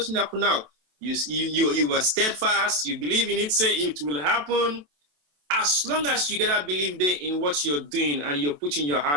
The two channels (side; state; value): left; late; 27 ms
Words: happen now. You were steadfast, you believe in it, say it will happen. As long as you get a belief there in what you're doing and you're putting your